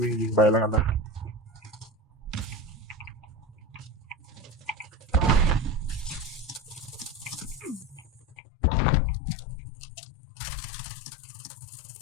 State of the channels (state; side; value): drops out; right; at 8.3 s